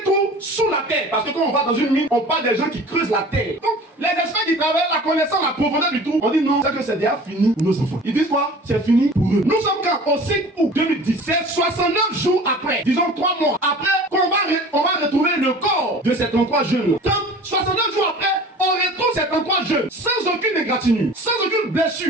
trou sous la terre. Parce que quand on va dans une mine, on parle des gens qui creusent la terre. Donc les experts qui travaillent la connaissant la profondeur du trou, on dit non, c'est que c'est déjà fini pour nos enfants. Ils disent quoi? C'est fini pour eux. Nous sommes quand? Au 5 août 2010. C'est 69 jours après, disons 3 mois après, on va retrouver le corps de ces 33 jeunes. 69 jours après, on retrouve ces 33 jeunes sans aucune égratignure, sans aucune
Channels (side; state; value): both; normal; correlation 0.42